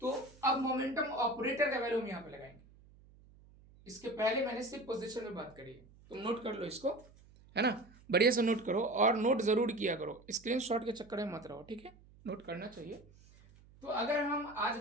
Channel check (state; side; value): noise; right; hum, 25 dB below the sound